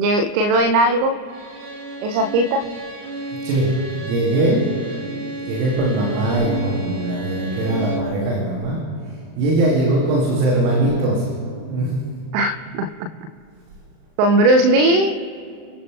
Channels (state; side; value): late; left; 38 ms